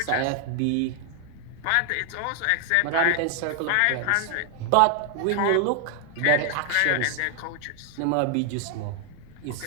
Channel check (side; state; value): both; different; correlation 0.00